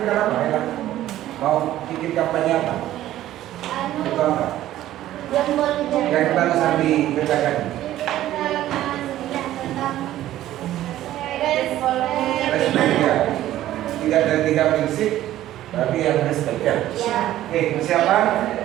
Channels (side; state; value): left; quieter; 13.6 dB